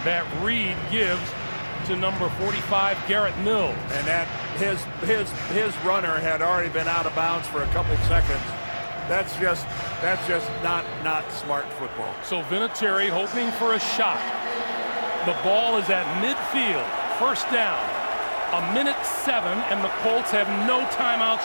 that Reed gives to number 45, Garrett Mills. And that his runner had already been out of bounds for a couple seconds. That's just not smart football. So Vinatieri hoping for a shot. The ball is at midfield, first down. 1:07, and the Colts have no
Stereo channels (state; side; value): inverted; both; correlation -1.00